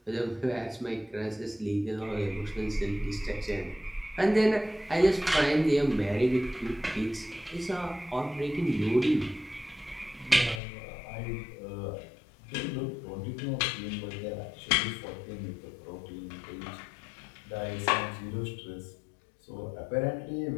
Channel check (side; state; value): right; drops out; at 10.6 s